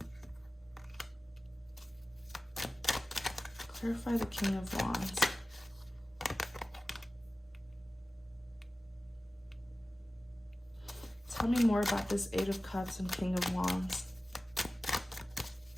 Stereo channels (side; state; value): both; normal; correlation 0.96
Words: Clarify the King of Wands. Tell me more about this Eight of Cups and King of Wands.